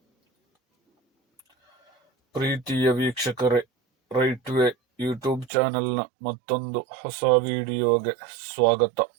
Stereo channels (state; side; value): drops out; left; at 5.5 s